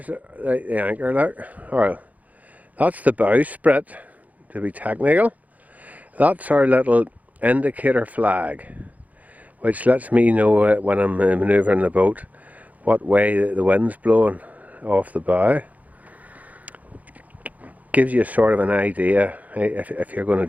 the anchor, look. Alright, that's the bowsprit, to be technical. That's our little indicator flag, which lets me know when I'm manoeuvring the boat what way the wind's blowing off the bow. Gives you sort of an idea if you're going to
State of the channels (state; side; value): late; left; 0.076 ms